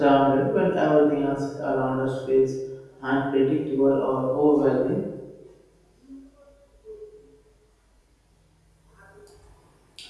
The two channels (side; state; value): both; identical; correlation 1.00